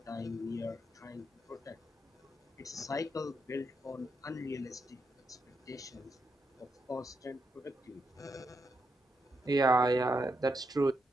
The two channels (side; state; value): both; normal; correlation 0.81